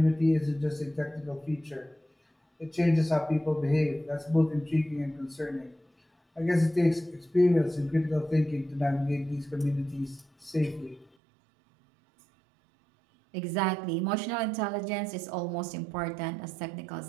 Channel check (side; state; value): left; drops out; at 11.1 s